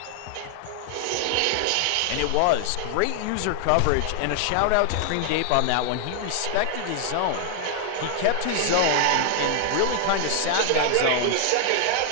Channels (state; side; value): different; both; correlation 0.00